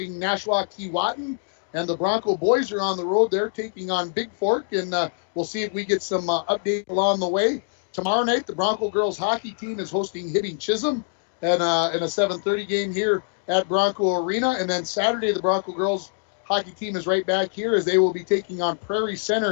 Nashua Keewatin, and the Bronco boys are on the road. They're taking on Big Fork, and we'll see if we get some update along the way. Tomorrow night, the Bronco girls hockey team is hosting Hibbing Chisholm in a 7:30 game here at Bronco Arena, and then Saturday, the Bronco girls hockey team is right back here as they will be taking on Prairie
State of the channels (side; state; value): right; silent; digital silence